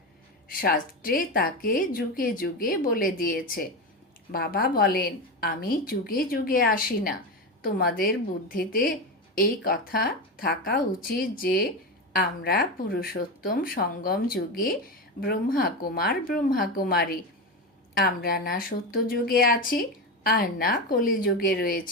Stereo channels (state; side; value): normal; both; correlation 0.18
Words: শাস্ত্রে তাকে যুগে যুগে বলে দিয়েছে। বাবা বলেন, আমি যুগে যুগে আসি না। তোমাদের বুদ্ধিতে এই কথা থাকা উচিত যে আমরা পুরুষোত্তম সঙ্গম যুগে ব্রহ্মাকুমার ব্রহ্মাকুমারী। আমরা না সত্যযুগে আছি আর না কলিযুগে